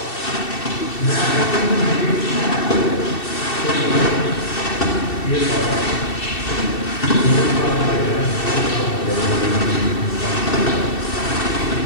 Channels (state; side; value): late; right; 2.7 ms